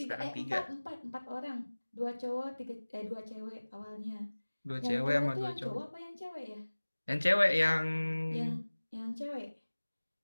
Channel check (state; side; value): inverted; both; correlation -1.00